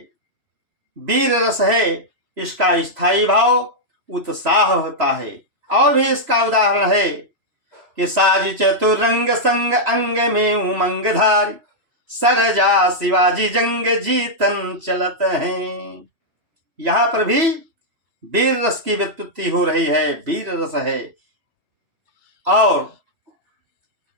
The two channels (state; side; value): late; left; 3.0 ms